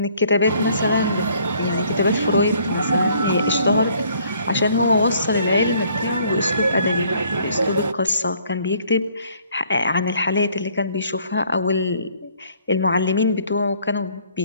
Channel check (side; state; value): both; inverted; correlation -0.61